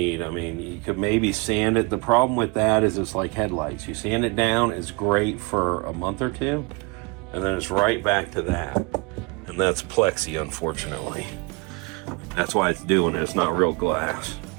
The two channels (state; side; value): quieter; left; 28.9 dB